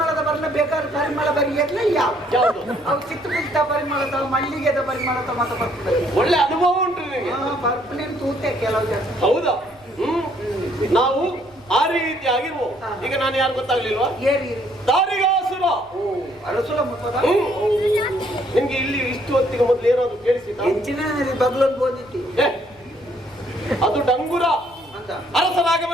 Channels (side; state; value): left; noise; rumble, 29 dB below the sound